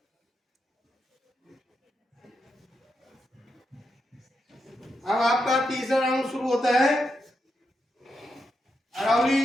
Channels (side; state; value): both; normal; correlation 0.85